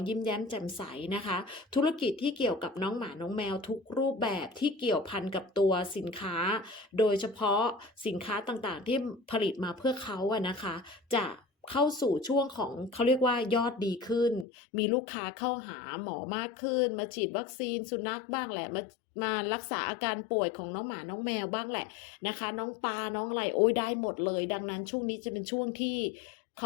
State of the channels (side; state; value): right; drops out; at 14.5 s